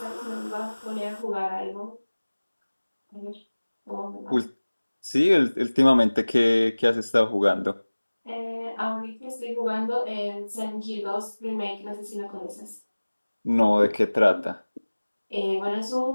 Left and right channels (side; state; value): both; inverted; correlation -1.00